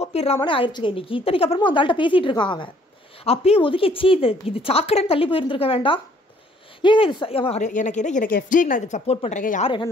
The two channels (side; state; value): both; normal; correlation 0.61